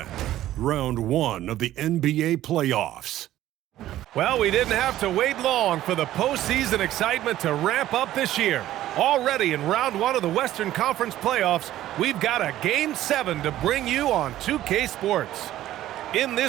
Round 1 of the NBA playoffs. Well, we didn't have to wait long for the postseason excitement to ramp up this year. Already in Round 1 of the Western Conference playoffs, we've got a Game 7 to bring you on 2K Sports. In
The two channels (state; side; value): quieter; left; 13.7 dB